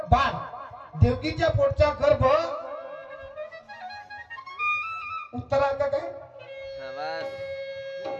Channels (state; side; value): identical; both; correlation 1.00